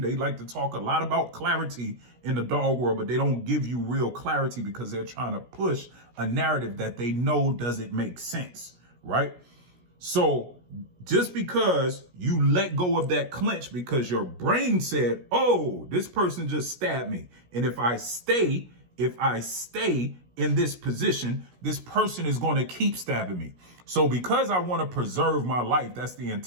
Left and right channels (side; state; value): left; late; 16 ms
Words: like to talk a lot about clarity in the dog world, but they don't give you real clarity because they're trying to push a narrative that they know doesn't make sense, right? So just because you let go of that clinch because your brain said, oh, this person just stabbed me. And if I stay in this position, this person is going to keep stabbing me. So because I want to preserve my life, that's the